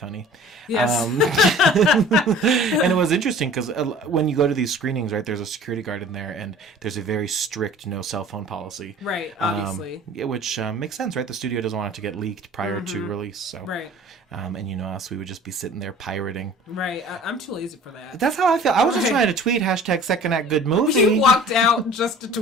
Yes. And it was interesting because when you go to these screenings, right, there's a security guard in there, and there's a very strict no cell phone policy. Right, obviously. Which makes sense, right? The studio doesn't want it to get leaked prior to release. So. Right. And you know us, we would just be sitting there pirating. Right. I'm too lazy for that. That's how I feel. I was just trying to tweet #Second Act Good Movie. You walked out just to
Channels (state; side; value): normal; both; correlation 0.46